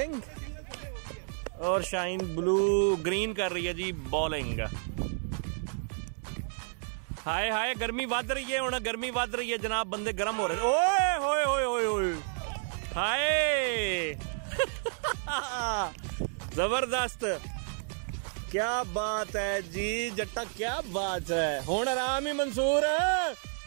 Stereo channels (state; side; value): silent; left; 57 dB below the other